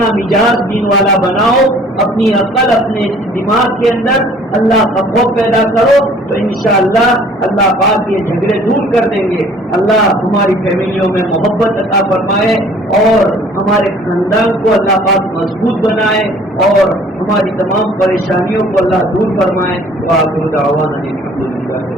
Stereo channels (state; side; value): normal; both; correlation 0.54